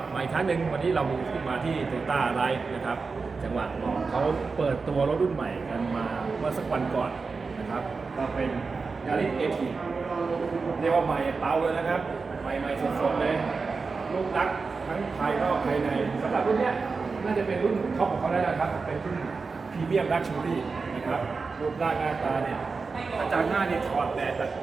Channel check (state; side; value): quieter; left; 4.5 dB